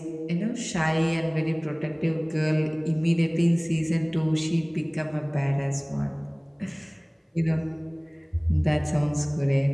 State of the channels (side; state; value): both; identical; correlation 1.00